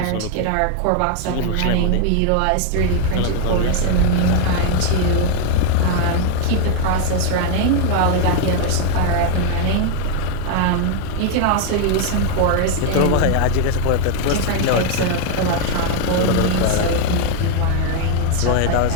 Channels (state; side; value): different; both; correlation 0.00